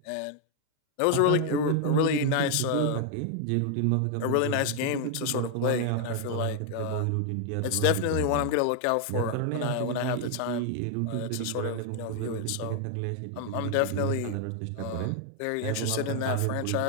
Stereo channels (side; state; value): both; different; correlation 0.00